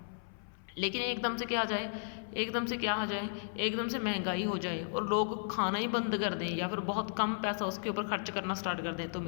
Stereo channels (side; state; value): right; silent; 55 dB below the other